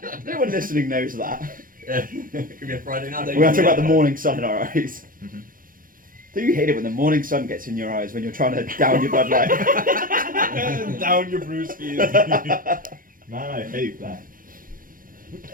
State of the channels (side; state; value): left; late; 0.40 ms